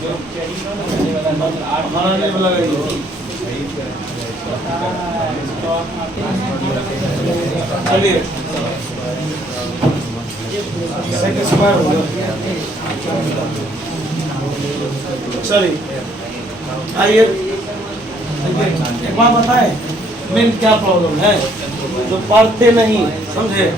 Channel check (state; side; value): normal; both; correlation 0.65